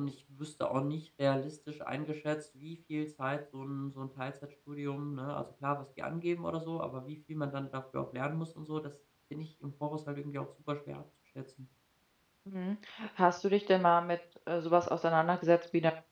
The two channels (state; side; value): identical; both; correlation 1.00